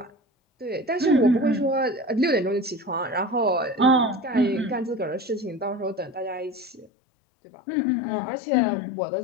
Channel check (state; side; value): drops out; right; at 6.9 s